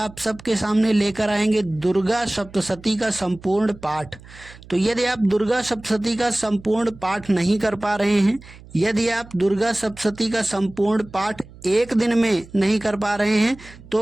सबके सामने लेकर आएंगे दुर्गा सप्तशती का संपूर्ण पाठ। तो यदि आप दुर्गा सप्तशती का संपूर्ण पाठ नहीं कर पा रहे हैं, यदि आप दुर्गा सप्तशती का संपूर्ण पाठ एक दिन में नहीं कर पा रहे हैं,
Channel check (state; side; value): noise; right; hum, 20 dB below the sound